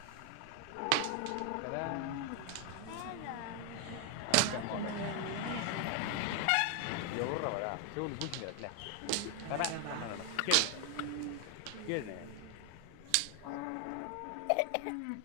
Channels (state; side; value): different; both; correlation 0.00